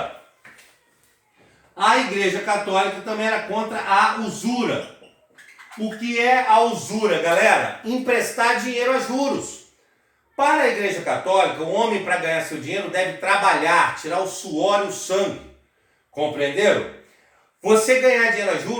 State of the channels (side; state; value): both; identical; correlation 1.00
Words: A Igreja Católica também era contra a usura. O que é a usura, galera? Emprestar dinheiro a juros. Para a Igreja Católica, o homem para ganhar seu dinheiro deve trabalhar, tirar o suor e o sangue. Compreenderam? Você ganhar dinheiro a